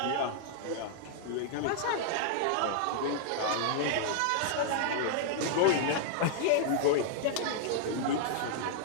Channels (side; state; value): both; different; correlation -0.01